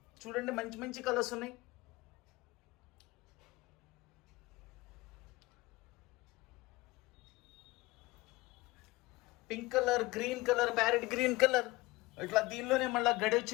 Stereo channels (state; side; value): quieter; right; 21.0 dB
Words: చూడండి, మంచి మంచి కలర్స్ ఉన్నాయి. Pink colour, green colour, parrot green colour, ఇట్లా దీనిలోనే మళ్ళీ గడి